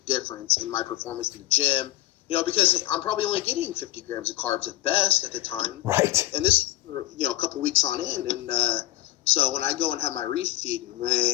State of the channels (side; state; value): right; quieter; 16.2 dB